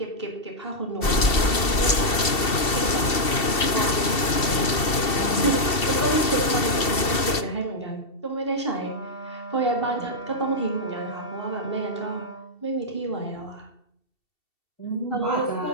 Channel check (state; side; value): late; right; 2.7 ms